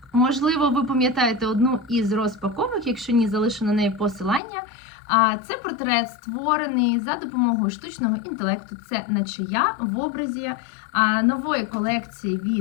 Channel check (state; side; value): drops out; right; at 4.4 s